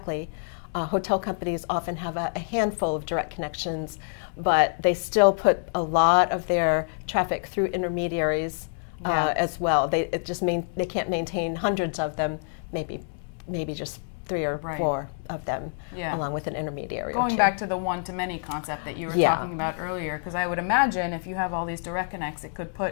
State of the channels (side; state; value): right; silent; 60 dB below the other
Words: Hotel companies often have a handful of direct connections, but they still put a lot of their traffic through intermediaries as well. They can't maintain hundreds of them, maybe just 3 or 4 of them, along with an intermediary. Going back to the one-to-many concept that you were talking about earlier, because I would imagine if you have all these direct connects, it could